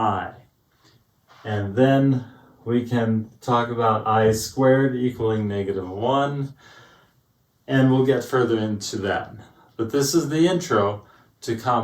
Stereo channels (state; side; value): identical; both; correlation 1.00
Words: And then we can talk about I squared equaling -1, and we'll get further into that. But this is the intro to